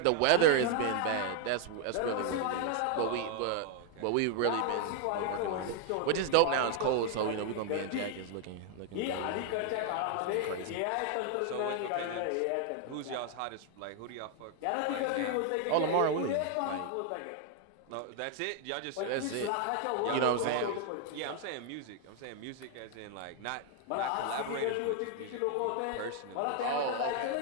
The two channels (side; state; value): both; different; correlation 0.00